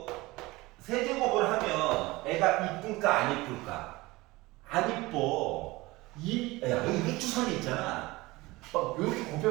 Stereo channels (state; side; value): quieter; left; 21.0 dB